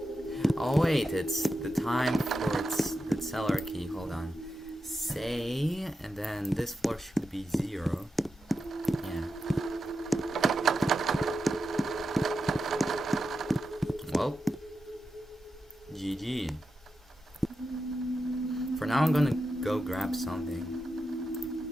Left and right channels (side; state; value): both; normal; correlation 0.89